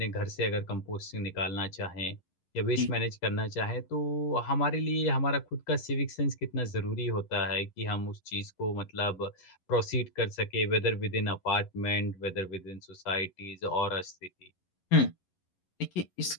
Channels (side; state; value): right; late; 11 ms